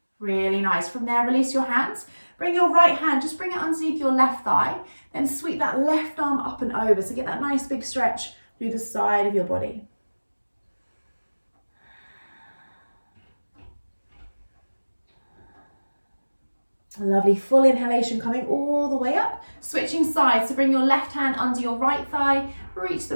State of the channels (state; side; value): inverted; both; correlation -1.00